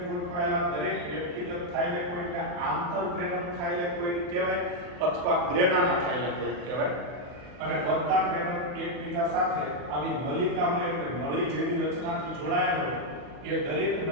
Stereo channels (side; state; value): left; late; 40 ms